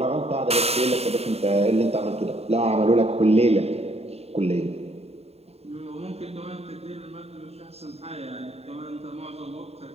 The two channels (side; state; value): left; late; 0.30 ms